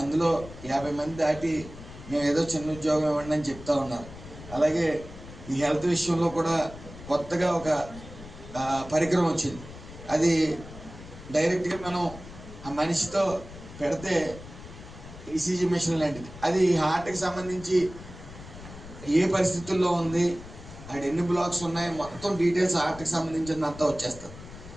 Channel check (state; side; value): noise; left; rumble, 15 dB below the sound